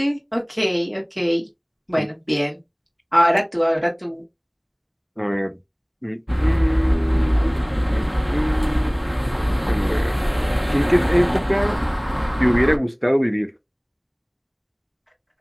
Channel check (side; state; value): both; identical; correlation 1.00